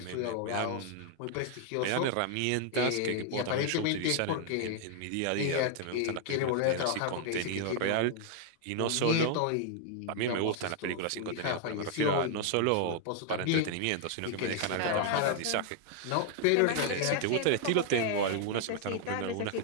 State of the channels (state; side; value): different; both; correlation 0.00